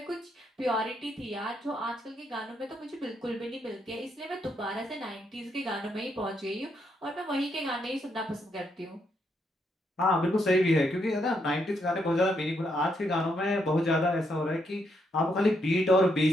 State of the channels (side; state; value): both; normal; correlation 0.77